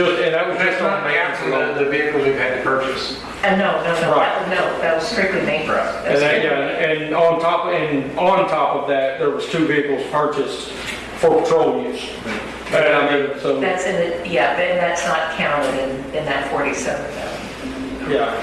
was That's just not on maintenance after alone. the vehicles we've had to purchase. No, Right. that was strictly maintenance. And on top of that, there was 2 vehicles purchased for patrol use. And I mean, so, That's in the, and that's not counted in that 47,000. yeah,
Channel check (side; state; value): both; identical; correlation 1.00